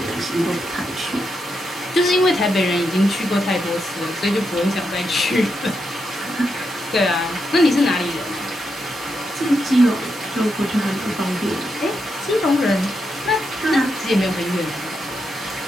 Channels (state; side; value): normal; both; correlation 0.84